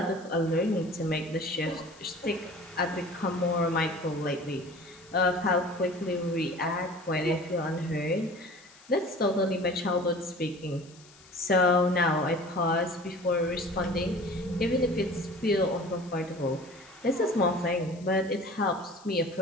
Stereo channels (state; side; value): noise; left; hiss, 24 dB below the sound